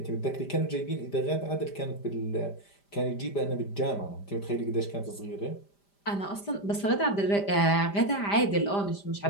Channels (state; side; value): late; right; 5.0 ms